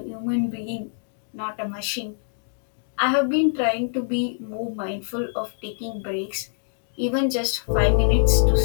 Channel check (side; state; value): right; silent; digital silence